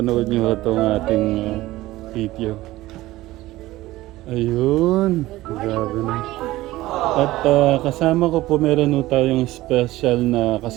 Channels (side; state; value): left; quieter; 17.2 dB